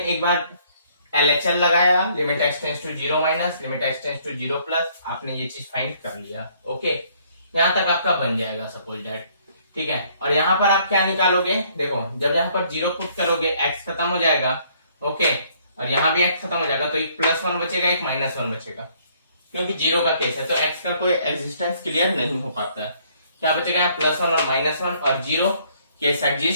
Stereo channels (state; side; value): inverted; both; correlation -0.64